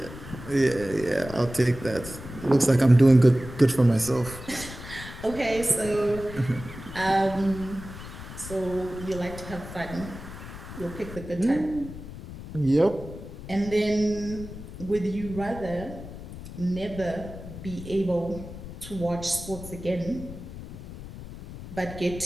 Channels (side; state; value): left; noise; rumble, 12 dB below the sound